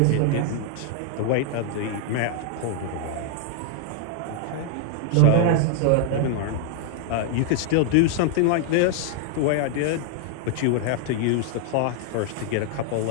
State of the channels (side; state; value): both; different; correlation -0.01